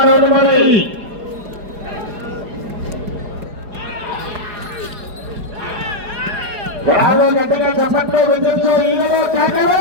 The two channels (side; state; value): left; late; 4.8 ms